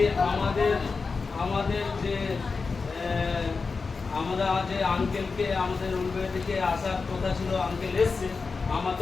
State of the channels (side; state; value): right; quieter; 4.6 dB